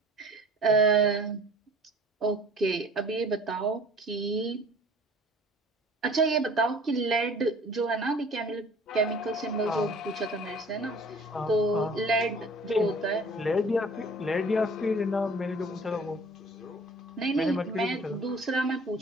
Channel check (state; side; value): normal; both; correlation 0.48